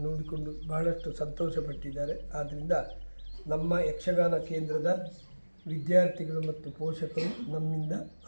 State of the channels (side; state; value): both; inverted; correlation -1.00